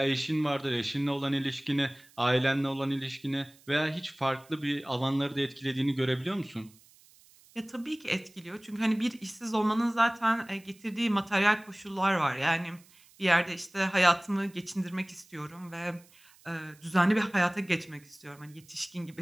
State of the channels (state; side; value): noise; right; hiss, 27 dB below the sound